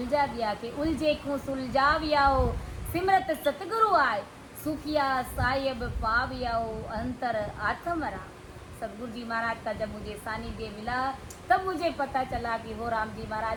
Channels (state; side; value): identical; both; correlation 1.00